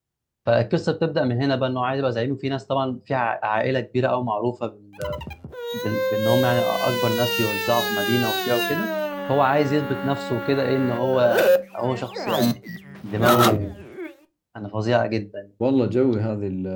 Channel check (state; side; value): identical; both; correlation 1.00